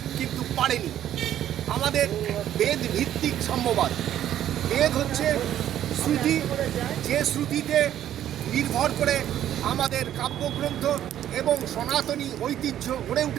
কিন্তু পারেনি। আমাদের বেদ ভিত্তিক সাম্যবাদ। বেদ হচ্ছে শ্রুতি, যে শ্রুতিতে নির্ভর করে আমাদের কাব্যগ্রন্থ এবং সনাতনী ঐতিহ্য গড়ে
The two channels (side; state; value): left; quieter; 11.4 dB